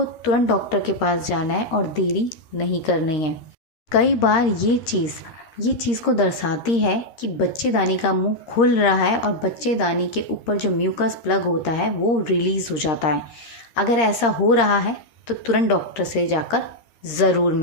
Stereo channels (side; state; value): right; late; 13 ms